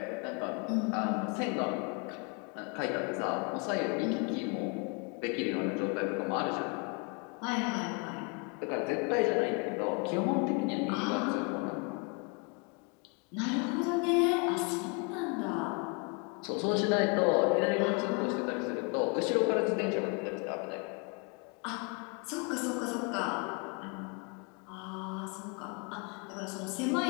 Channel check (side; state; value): right; quieter; 33.7 dB